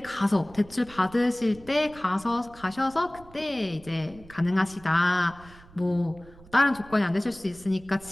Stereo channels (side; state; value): right; noise; rumble, 22 dB below the sound